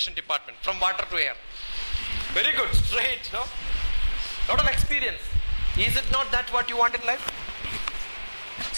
department, from water to air. Very good, straight, no? Lot of experience. Is it not that what you want in life?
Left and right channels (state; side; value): inverted; both; correlation -1.00